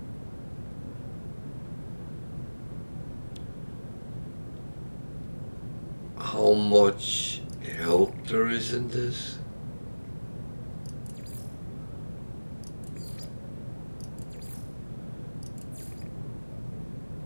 how much help there is in this.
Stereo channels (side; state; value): both; inverted; correlation -1.00